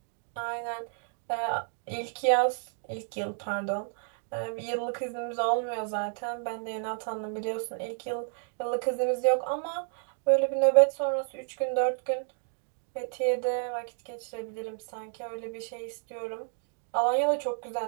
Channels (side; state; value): left; silent; 57 dB below the other